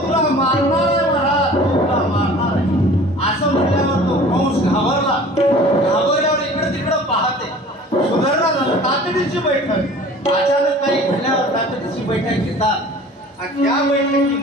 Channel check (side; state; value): both; normal; correlation 0.45